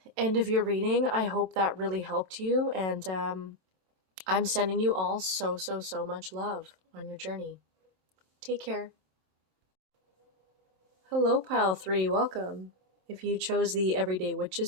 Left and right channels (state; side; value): late; left; 23 ms